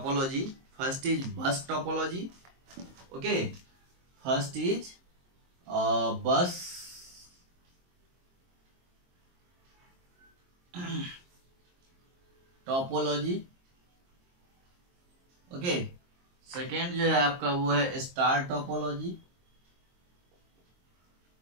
First is bus topology. Okay, first is bus topology. Okay, second जो है आपका वो है स्टार टोपोलॉजी।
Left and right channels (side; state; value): left; late; 23 ms